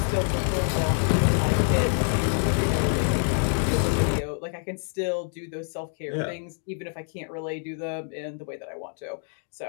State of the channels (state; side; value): silent; right; 55 dB below the other